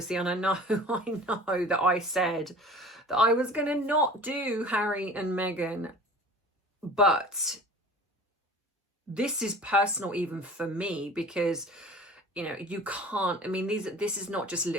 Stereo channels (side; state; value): both; normal; correlation 0.42